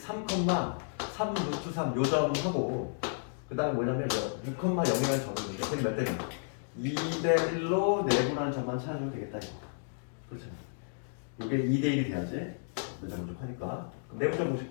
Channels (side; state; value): right; silent; digital silence